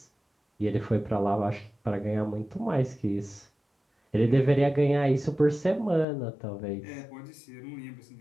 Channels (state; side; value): drops out; right; at 6.1 s